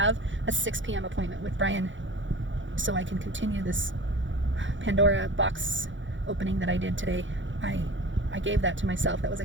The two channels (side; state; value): left; late; 0.55 ms